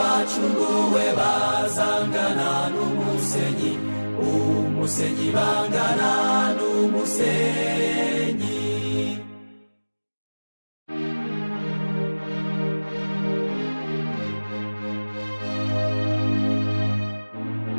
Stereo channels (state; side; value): inverted; both; correlation -1.00